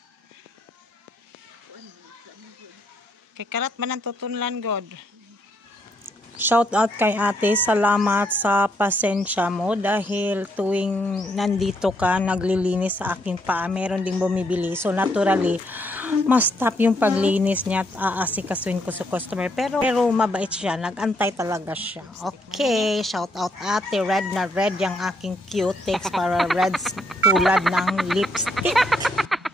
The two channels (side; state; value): both; normal; correlation 0.74